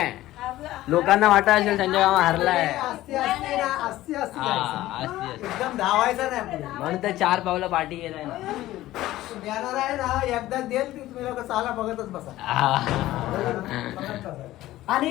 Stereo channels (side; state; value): right; quieter; 15.6 dB